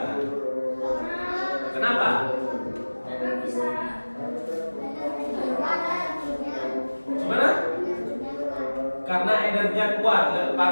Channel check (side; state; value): both; inverted; correlation -1.00